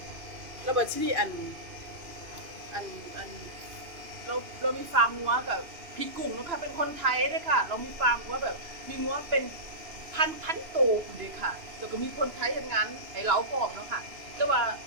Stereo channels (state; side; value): late; left; 2.9 ms